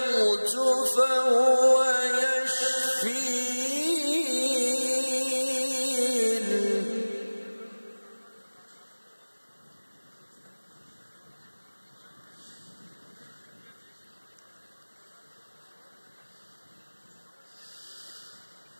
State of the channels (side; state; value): both; inverted; correlation -1.00